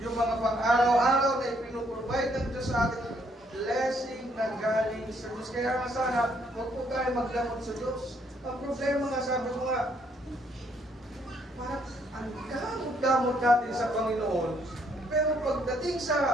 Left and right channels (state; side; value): normal; both; correlation 0.69